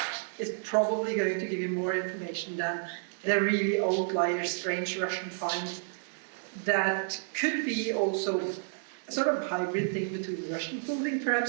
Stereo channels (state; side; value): silent; left; digital silence